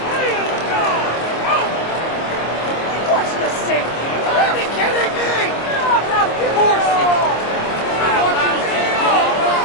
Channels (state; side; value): late; right; 26 ms